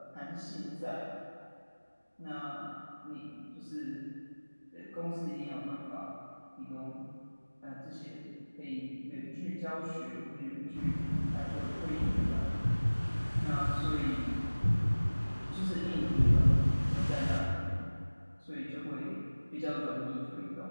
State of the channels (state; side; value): inverted; both; correlation -1.00